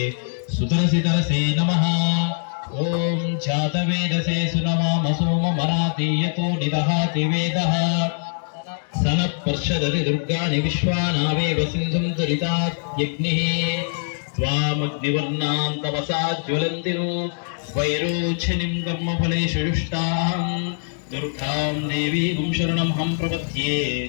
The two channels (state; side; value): silent; right; digital silence